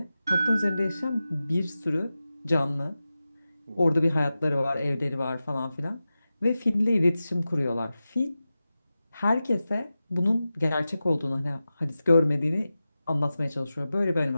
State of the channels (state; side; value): inverted; both; correlation -0.94